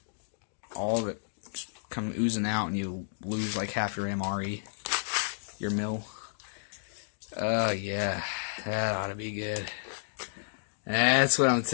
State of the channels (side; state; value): right; silent; digital silence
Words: all of it just come oozing out and you lose like half your MRE, your mill. Oh, yeah. That ought to be good. That's what I'm